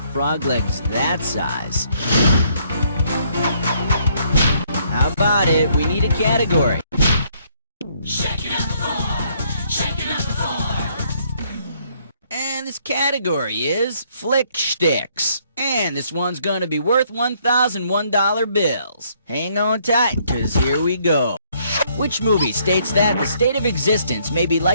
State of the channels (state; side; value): inverted; both; correlation -0.68